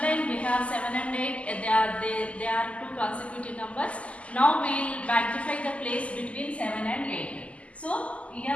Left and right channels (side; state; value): right; late; 0.064 ms